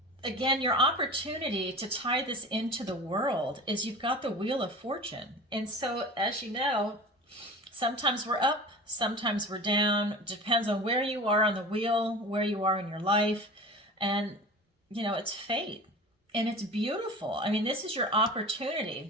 again, your opportunity to tie this into the world is you've got the Wheel of Fortune. And so, as you know, sometimes we're up, sometimes we're down. Depends on where you are on the wheel, where you are in your life. And, it's fate. And it's beautiful. I mean, this is your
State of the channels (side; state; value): both; normal; correlation 0.35